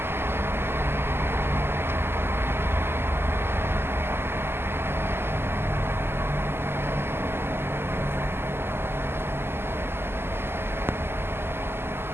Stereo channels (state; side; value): late; left; 0.12 ms